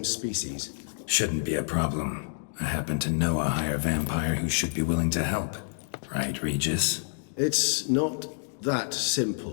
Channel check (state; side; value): silent; right; digital silence